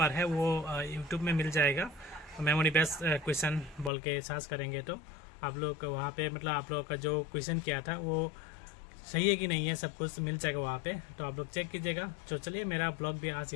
है वो यूट्यूब में मिल जाएगा, मेमोरी बेस्ड क्वेश्चन बोल के सर्च करेंगे तो आप लोग वहाँ पे मतलब आप लोग का जो क्वेश्चन किया था वो सही है कि नहीं है सब कुछ मिल जाएगा वहाँ पे, तो आप लोग चेक कीजिएगा। तो चलिए मेरा ब्लॉग भी आज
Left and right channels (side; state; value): right; drops out; at 3.9 s